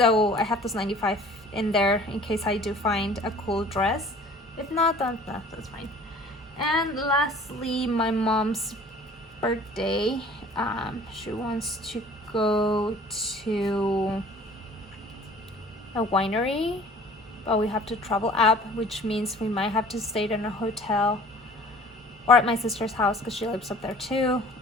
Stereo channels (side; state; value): both; normal; correlation 0.49